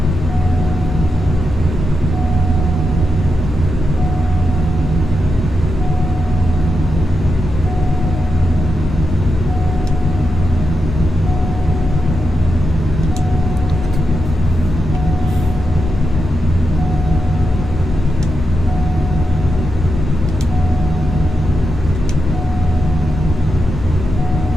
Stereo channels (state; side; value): normal; both; correlation 0.86